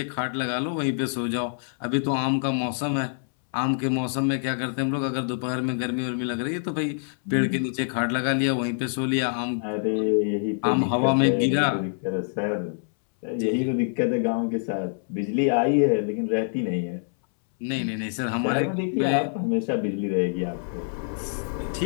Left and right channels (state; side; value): silent; right; 61 dB below the other